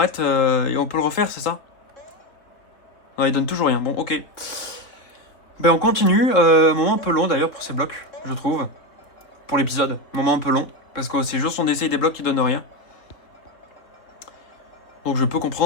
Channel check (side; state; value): right; late; 3.7 ms